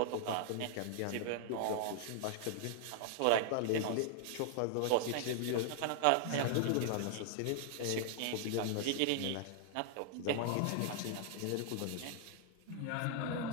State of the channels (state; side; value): different; both; correlation -0.01